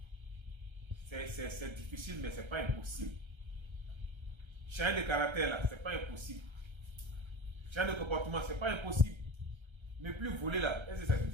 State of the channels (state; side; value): late; left; 1.3 ms